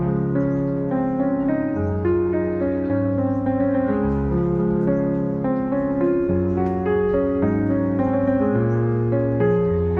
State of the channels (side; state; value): both; identical; correlation 1.00